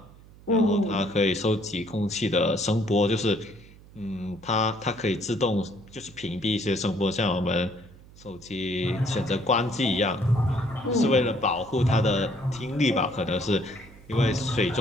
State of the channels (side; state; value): right; noise; hum, 22 dB below the sound